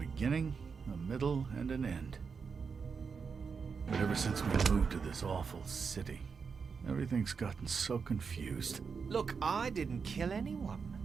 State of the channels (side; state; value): left; quieter; 5.6 dB